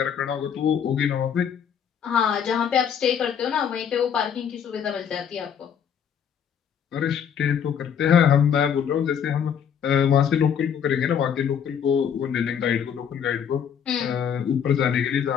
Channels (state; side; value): quieter; right; 8.0 dB